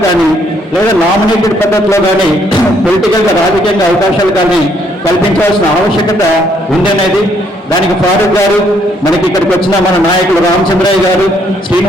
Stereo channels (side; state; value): both; normal; correlation 0.69